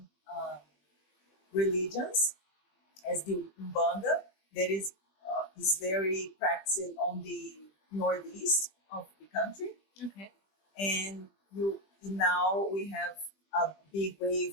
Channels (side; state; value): right; late; 20 ms